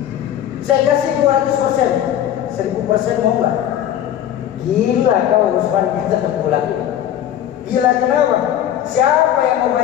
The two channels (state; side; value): quieter; right; 10.9 dB